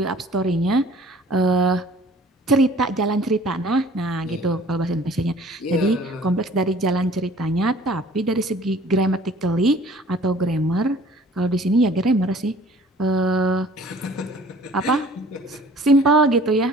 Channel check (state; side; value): normal; both; correlation 0.51